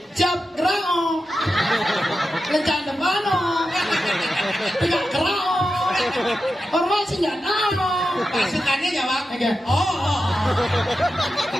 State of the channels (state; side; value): normal; both; correlation 0.90